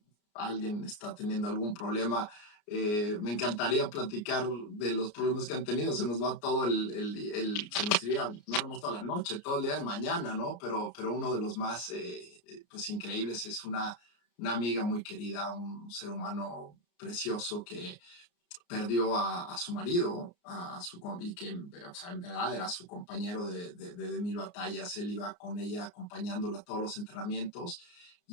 alguien está teniendo algún problema. Me encantaría platicar de los problemas que han tenido. Se nos va todo se nos iría, no hemos toda la noche, todo el día de mañana, ¿no? Pero uno de los más, pues, increíbles es una amiga muy querida, un ser humano precioso que perdió a su marido, y que, o sea, en verdad era su compañero de mil batallas. Él iba con ella acompañándola a todos los entrenamientos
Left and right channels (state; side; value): late; right; 34 ms